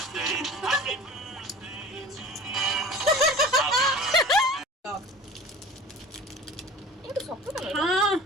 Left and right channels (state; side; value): normal; both; correlation 0.40